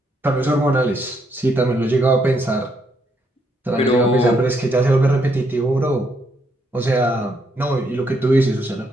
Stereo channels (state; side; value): normal; both; correlation 0.74